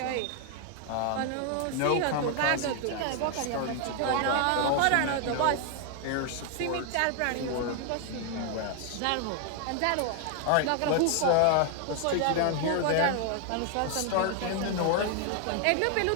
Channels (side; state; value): both; different; correlation 0.01